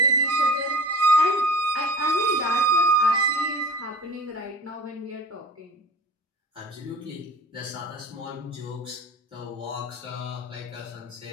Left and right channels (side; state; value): both; normal; correlation 0.38